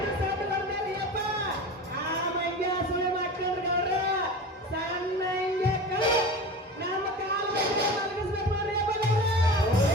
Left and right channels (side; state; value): both; normal; correlation 0.32